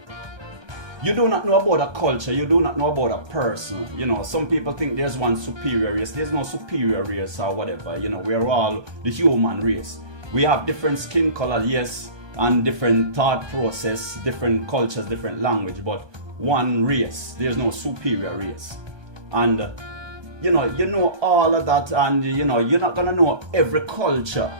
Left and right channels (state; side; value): late; left; 1.2 ms